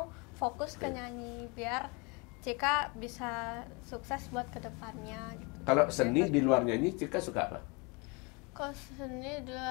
fokus ke nyanyi biar Cika bisa sukses buat kedepannya gitu. Kalau seni di luar nyanyi, Cika suka apa? Kalau seni di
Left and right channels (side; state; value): right; quieter; 29.7 dB